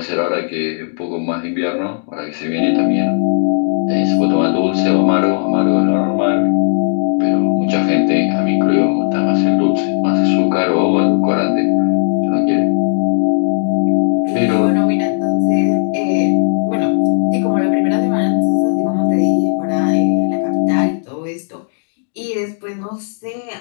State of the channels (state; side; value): silent; right; digital silence